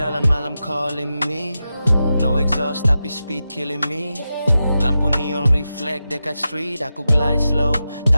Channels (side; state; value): both; inverted; correlation -0.91